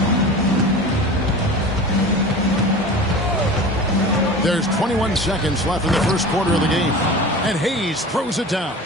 There's 21 seconds left in the first quarter of the game. And Hayes throws it down.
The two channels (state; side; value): normal; both; correlation 0.35